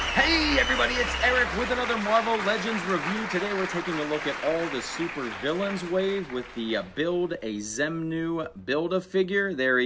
Hey everybody, it's Eric with another Marvel Legends review. Today we're taking a look at all the super villains wave with the Build a Xenmu Build-A-Figure. There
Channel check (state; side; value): identical; both; correlation 1.00